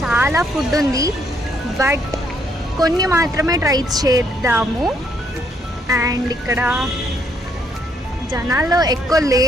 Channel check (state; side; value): normal; both; correlation 0.71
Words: ఫుడ్ ఉంది, బట్ కొన్ని మాత్రమే ట్రై చేద్దాము. అండ్ ఇక్కడ జనాలు ఎక్కువ